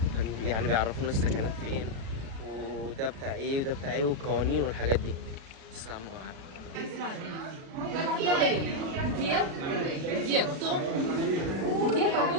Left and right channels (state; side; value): late; left; 36 ms